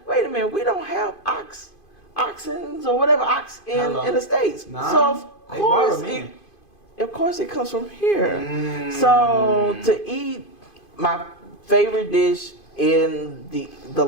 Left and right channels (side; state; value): right; late; 2.5 ms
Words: Wait a minute, we don't have oxens or whatever in the States. Nah, so of course it comes from here. So to eat my favorite dish in the